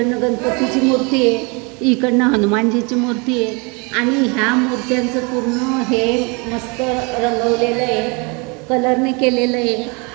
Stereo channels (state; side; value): quieter; left; 30.6 dB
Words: गणपतीची मूर्ती आहे, इकडनं हनुमानजीची मूर्ती आहे. आणि ह्या मूर्त्यांचं पूर्ण हे मस्त रंगवलेलं आहे, कलरने केलेलं आहे.